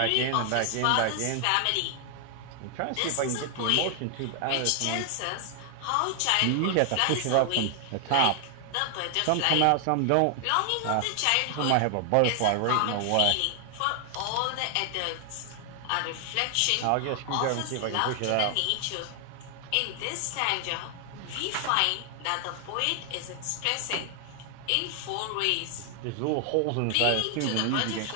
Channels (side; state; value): both; different; correlation 0.00